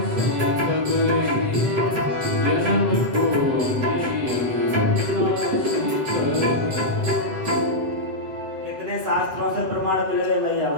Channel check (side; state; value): left; late; 7.6 ms